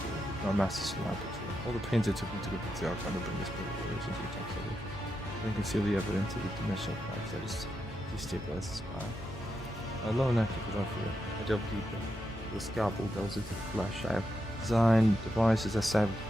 Our master's laboratory. All the pains it took me to go back to the archive and bring this book of into the text of it. You can see the evidence of the dimensional life that is destabilized the spine. Alone active without fear. I delve deeper. The scalpel delves into the flesh. I have designed devices that stab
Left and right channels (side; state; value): both; normal; correlation 0.85